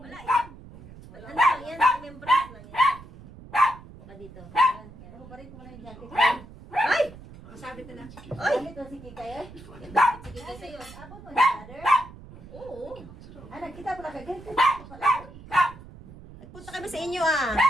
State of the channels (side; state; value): right; noise; rumble, 17 dB below the sound